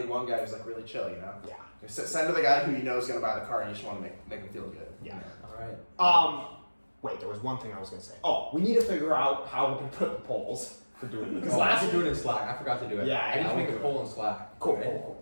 one guy who's like really chill, you know? Yeah. Send to the guy who you know is gonna buy the car and you just wanna make him feel good. Yeah. All right. Wait, there was one thing I was gonna say. Oh, we need to figure out how we can put the polls for doing this. Because last do it in Slack. I forgot to do it. Yeah, I need to I'll make do a it. poll in Slack. Cool, right? cool.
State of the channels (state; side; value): inverted; both; correlation -1.00